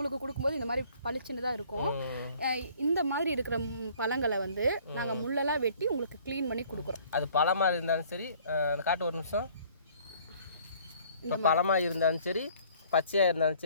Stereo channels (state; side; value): inverted; both; correlation -0.56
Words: கொடுக்கும்போது இந்த மாதிரி பளிச்சுன்னு தான் இருக்கும். இந்த மாதிரி இருக்கிற பழங்களை வந்து நாங்கள் முள்ளெல்லாம் வெட்டி உங்களுக்கு க்ளீன் பண்ணி கொடுக்குறோம். அது பழமாக இருந்தாலும் சரி, காட்டு ஒரு நிமிஷம். இப்போ பழமாக இருந்தாலும் சரி, பச்சையாக இருந்தாலும்